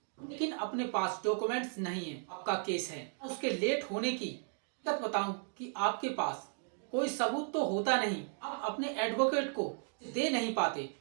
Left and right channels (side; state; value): left; silent; 54 dB below the other